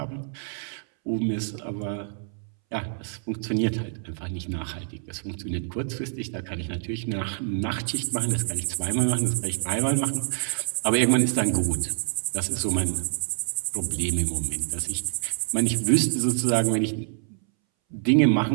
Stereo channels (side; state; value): left; silent; 61 dB below the other